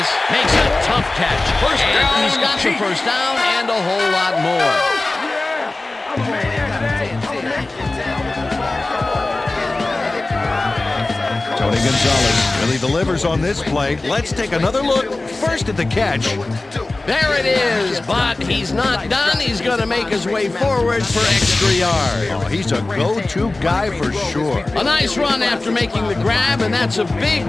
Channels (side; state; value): right; quieter; 3.0 dB